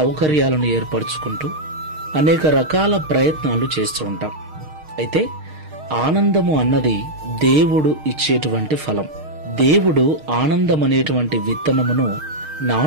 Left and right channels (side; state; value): left; late; 6.5 ms